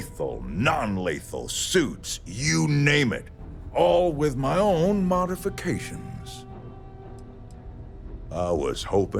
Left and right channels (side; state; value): both; identical; correlation 1.00